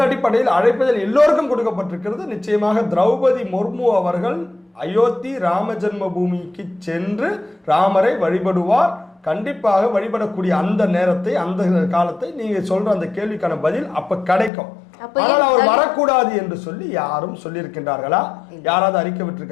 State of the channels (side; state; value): right; drops out; at 14.5 s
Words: அடிப்படையில் அழைப்புதல் எல்லோருக்கும் கொடுக்கப்பட்டிருக்கிறது. நிச்சயமாக திரௌபதி முர்மு அவர்கள் அயோத்தி ராம ஜென்ம பூமிக்கு சென்று ராமரை வழிபடுவார். கண்டிப்பாக வழிபடக்கூடிய அந்த நேரத்தை, அந்த காலத்தை நீங்க சொல்ற அந்த கேள்விக்கான பதில் அப்ப கிடைக்கும். ஆனால் அவர் வரக்கூடாது என்று சொல்லி யாரும் சொல்லியிருக்கின்றார்களா? யாராவது அறிக்கை